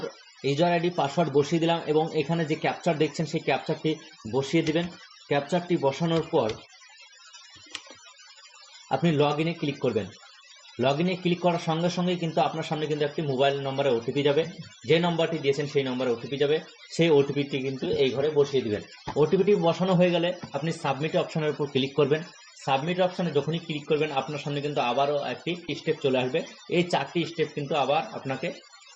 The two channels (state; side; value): identical; both; correlation 1.00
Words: ইউজার আইডি পাসওয়ার্ড বসিয়ে দিলাম এবং এখানে যে ক্যাপচার দেখছেন সেই ক্যাপচারটি বসিয়ে দিবেন। ক্যাপচারটি বসানোর পর আপনি লগ ইনে ক্লিক করবেন। লগ ইনে ক্লিক করার সঙ্গে সঙ্গেই কিন্তু আপনার সামনে কিন্তু একটি মোবাইল নম্বরে ওটিপি যাবে, যে নম্বরটি দিয়েছেন সেই নম্বরে ওটিপি যাবে, সেই ওটিপিটি কিন্তু এই ঘরে বসিয়ে দিবেন। ওটিপিটি বসানো হয়ে গেলে আপনি সাবমিট অপশনের উপর ক্লিক করবেন। সাবমিট অপশনে যখনই ক্লিক করবেন আপনার সামনে কিন্তু আবারও একটি স্টেপ চলে আসবে। এই 4টি স্টেপ কিন্তু আবার আপনাকে